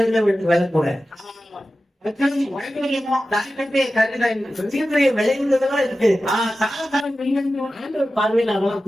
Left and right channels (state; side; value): normal; both; correlation 0.94